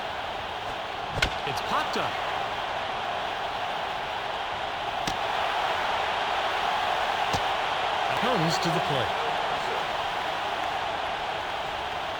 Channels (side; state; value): both; identical; correlation 1.00